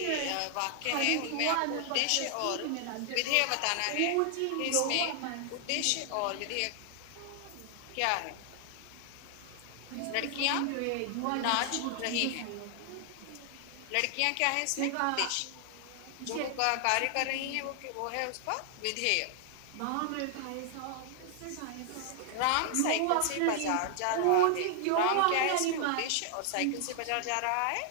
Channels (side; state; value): both; different; correlation 0.00